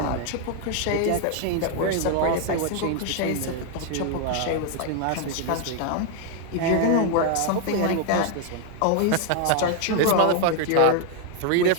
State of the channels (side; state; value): both; different; correlation 0.00